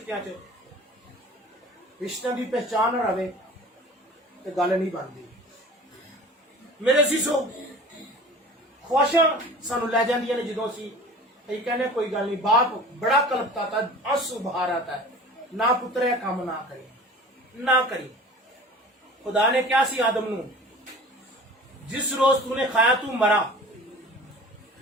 च, रिश्तों की पहचान ना रहे तो गल नहीं बनती। मेरे जीजो, ख्वाहिशां सानू लै जांदियां ने, जो असीं कहने कोई गल नहीं, बाप बड़ा कलपता था, आंसू बहार आता है, ना पुत्रे काम ना करी ना करी। खुदा ने क्या सी आदम नू, जिस रोज तूने खाया तू मरा,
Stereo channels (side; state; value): both; normal; correlation 0.42